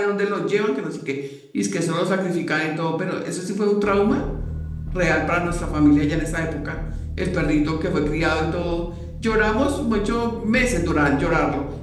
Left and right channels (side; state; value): both; identical; correlation 1.00